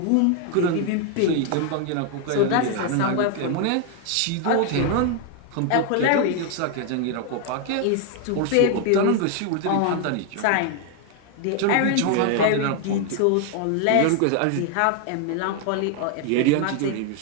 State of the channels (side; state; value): both; different; correlation 0.01